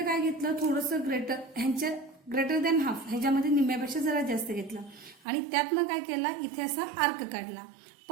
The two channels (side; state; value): left; drops out; at 5.2 s